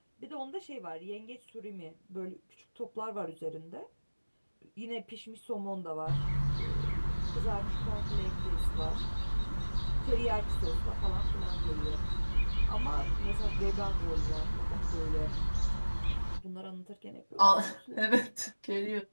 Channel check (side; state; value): both; inverted; correlation -1.00